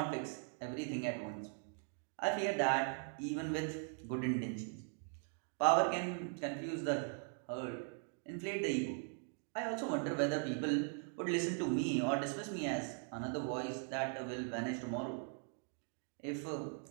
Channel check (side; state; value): left; silent; 51 dB below the other